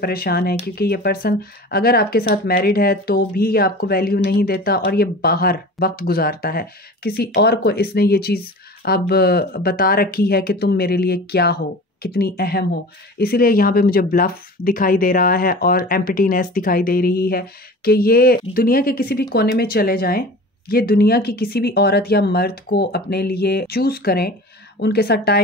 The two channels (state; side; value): normal; both; correlation 0.37